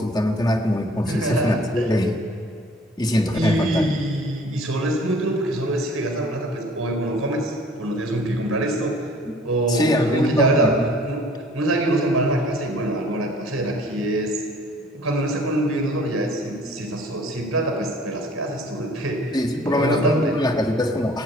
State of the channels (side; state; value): both; normal; correlation 0.52